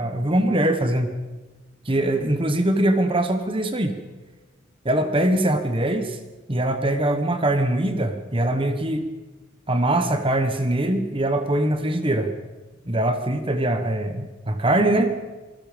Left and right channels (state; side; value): normal; both; correlation 0.62